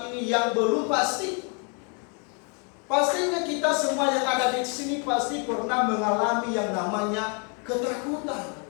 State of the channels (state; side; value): quieter; right; 37.7 dB